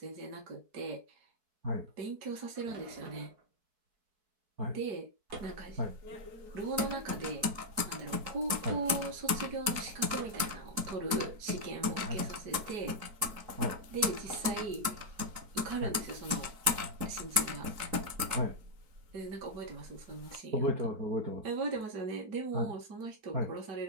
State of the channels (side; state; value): left; late; 4.6 ms